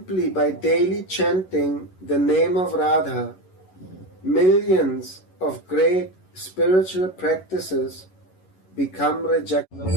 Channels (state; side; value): late; right; 11 ms